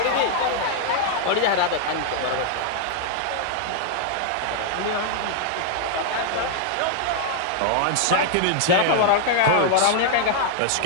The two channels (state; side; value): different; both; correlation 0.00